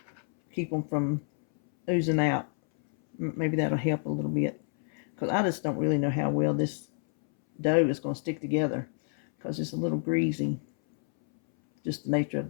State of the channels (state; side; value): silent; right; 59 dB below the other